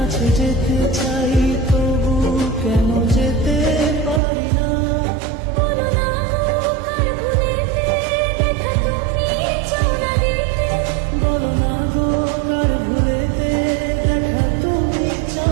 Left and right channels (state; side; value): drops out; left; at 4.2 s